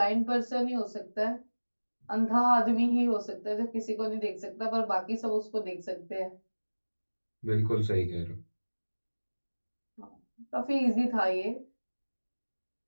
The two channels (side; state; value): both; inverted; correlation -1.00